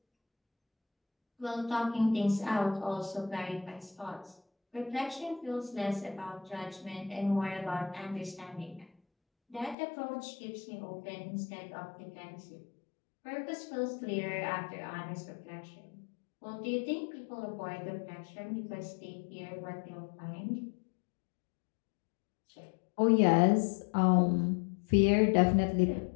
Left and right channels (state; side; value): drops out; right; at 9.8 s